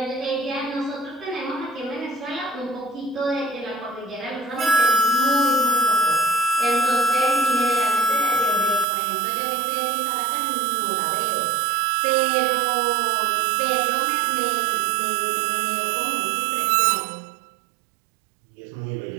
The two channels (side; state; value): left; drops out; at 8.8 s